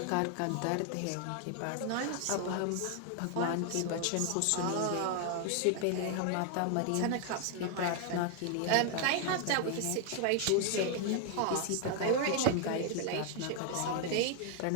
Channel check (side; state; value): both; different; correlation 0.00